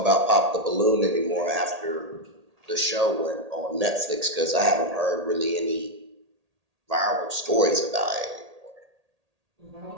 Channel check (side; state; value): left; late; 1.8 ms